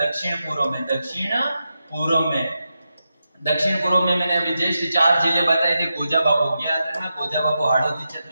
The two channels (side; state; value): both; inverted; correlation -0.88